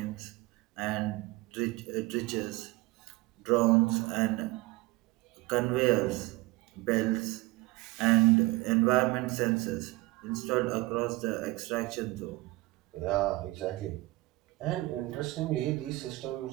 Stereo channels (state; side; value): quieter; left; 21.4 dB